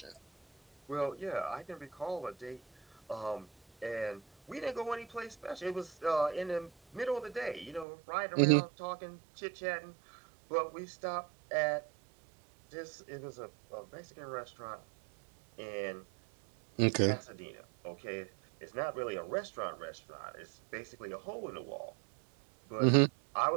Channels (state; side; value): drops out; left; at 7.9 s